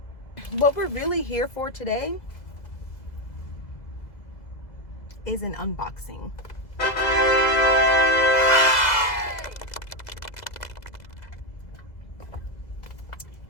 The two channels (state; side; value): late; right; 2.0 ms